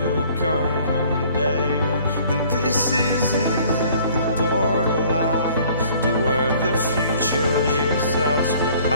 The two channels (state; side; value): inverted; both; correlation -0.55